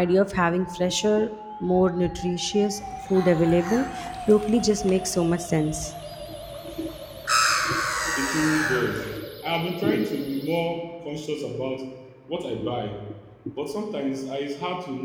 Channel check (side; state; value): both; identical; correlation 1.00